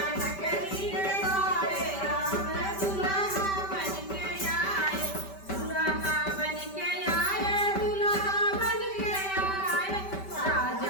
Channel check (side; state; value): right; late; 5.1 ms